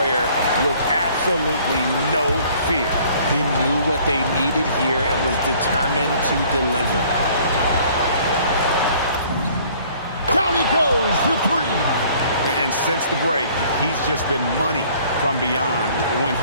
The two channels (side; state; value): both; inverted; correlation -0.56